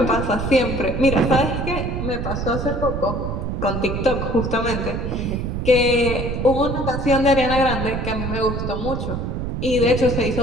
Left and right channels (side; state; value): right; noise; rumble, 3 dB below the sound